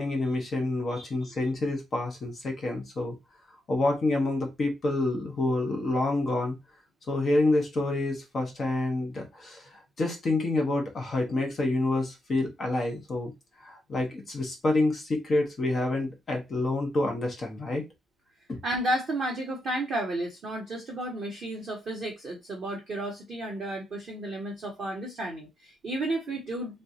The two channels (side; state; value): both; normal; correlation 0.84